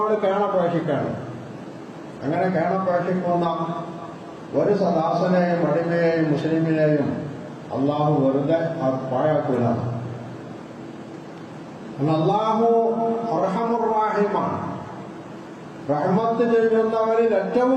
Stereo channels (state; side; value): identical; both; correlation 1.00